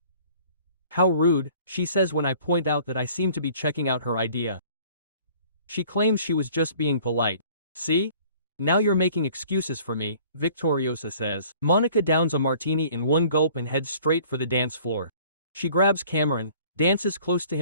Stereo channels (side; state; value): both; inverted; correlation -0.52